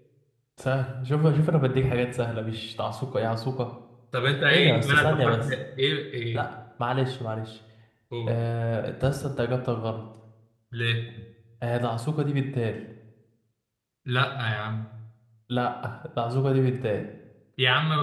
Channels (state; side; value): identical; both; correlation 1.00